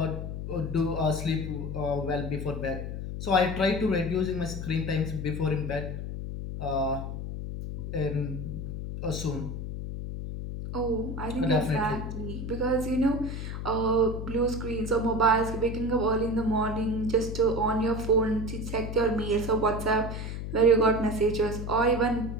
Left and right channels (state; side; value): noise; left; hum, 6 dB below the sound